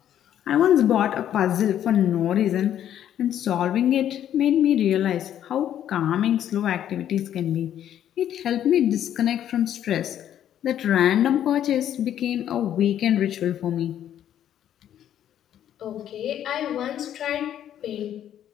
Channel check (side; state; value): right; quieter; 10.7 dB